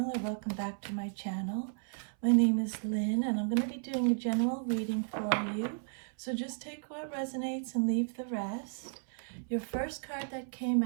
or welcome back to my channel. My name is Lynn, and I'm going to be doing a general reading for you. So just take what resonates and leave the rest. Your first card that came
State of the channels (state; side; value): silent; left; 55 dB below the other